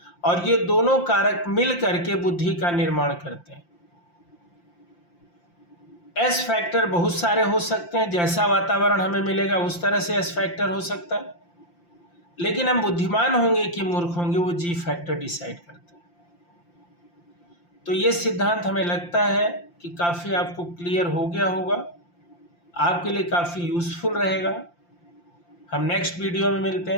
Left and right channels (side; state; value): right; late; 5.8 ms